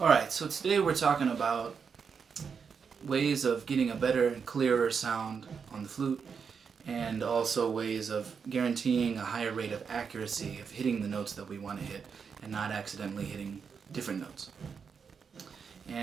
so today we're talking about ways of getting a better and clearer sound on the flute, and also ways of guaranteeing a higher rate of accuracy of hitting the notes that we want to hit and not accidentally hitting different notes.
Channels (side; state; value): left; quieter; 6.1 dB